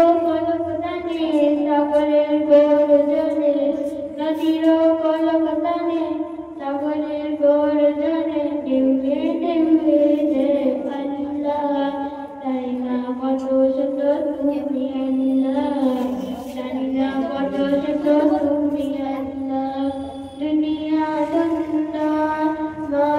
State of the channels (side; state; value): both; identical; correlation 1.00